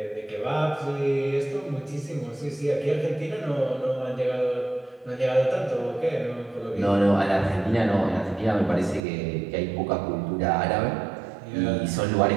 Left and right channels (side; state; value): left; drops out; at 9.0 s